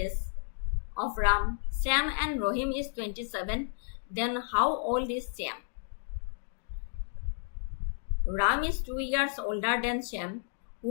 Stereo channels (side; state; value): right; silent; digital silence